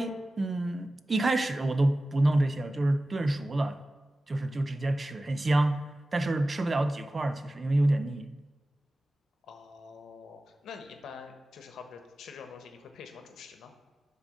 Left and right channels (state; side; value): normal; both; correlation 0.96